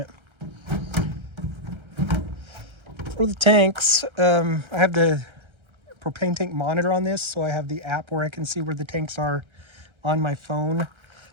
For the tanks, I have the propane tank monitor on this, so I have the app where I can see where the tanks are on my phone.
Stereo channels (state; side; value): late; left; 1.3 ms